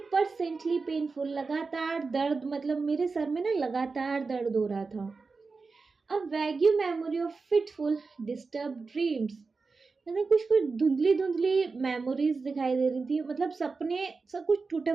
परसेंटली पेनफुल, लगातार दर्द, मतलब मेरे सर में ना लगातार दर्द हो रहा था। A vague memory of fitful disturb dreams, मतलब कुछ धुंधली मेमोरीज दिखाई दे रही थी, मतलब सपने सब कुछ टूटा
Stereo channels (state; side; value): quieter; left; 4.3 dB